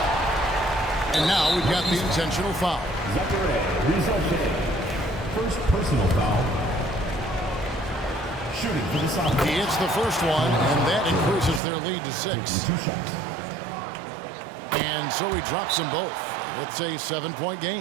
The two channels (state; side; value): drops out; left; at 11.6 s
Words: And now we've got the intentional foul. Zachary Rizachet. First personal foul. Shooting for the sophomores. He hits the first one, and that increases their lead to 6. 2 shots. And so he drops them both. It's a 7-point